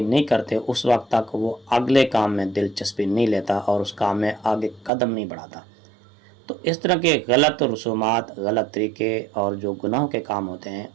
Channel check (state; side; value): drops out; left; at 4.9 s